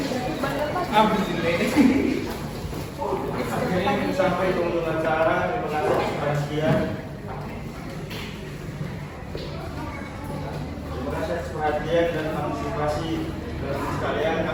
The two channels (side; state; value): both; identical; correlation 1.00